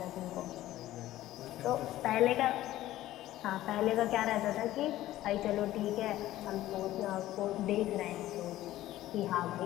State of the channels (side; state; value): right; quieter; 14.7 dB